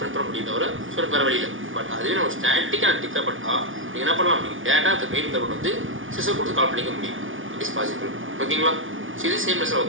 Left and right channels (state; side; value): late; left; 0.57 ms